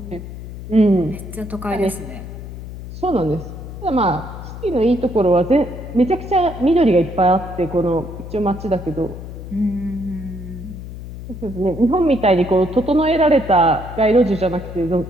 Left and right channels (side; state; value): left; noise; hum, 11 dB below the sound